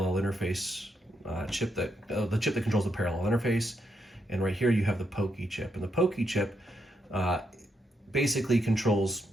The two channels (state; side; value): normal; both; correlation 0.80